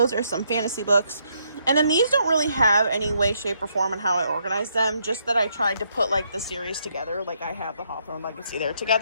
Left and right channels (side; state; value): both; inverted; correlation -0.74